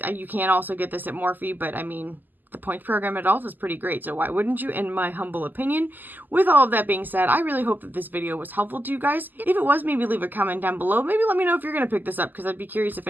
You can also get this at Morphe, but I mean, the points program at Ulta is pretty great, so why wouldn't you, in my humble opinion? With all of that being said, I really hope that this video was helpful to you guys. If it was, maybe leave a comment down below. Maybe let me know if you're going to pick this up, because I'd be curious if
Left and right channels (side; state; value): left; late; 0.086 ms